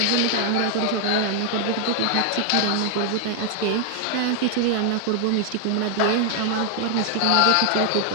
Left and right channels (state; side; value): different; both; correlation 0.00